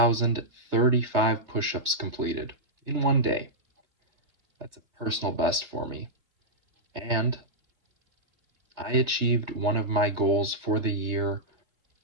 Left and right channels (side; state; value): left; late; 3.3 ms